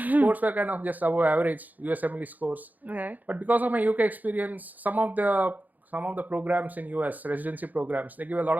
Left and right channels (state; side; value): late; left; 0.081 ms